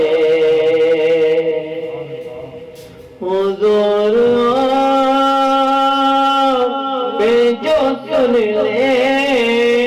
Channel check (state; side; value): identical; both; correlation 1.00